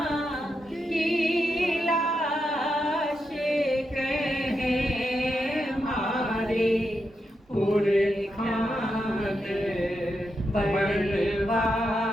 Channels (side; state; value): both; normal; correlation 0.85